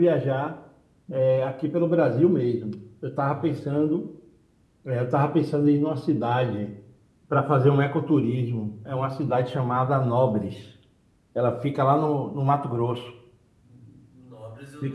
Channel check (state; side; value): identical; both; correlation 1.00